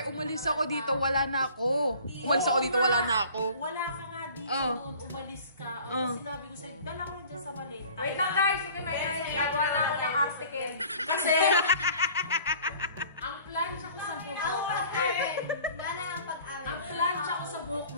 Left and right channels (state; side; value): inverted; both; correlation -0.48